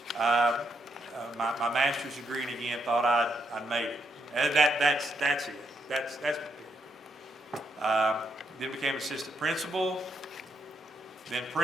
my master's degree, and again thought I'd made it. That's it. That's then became assistant principal, then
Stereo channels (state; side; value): normal; both; correlation 0.78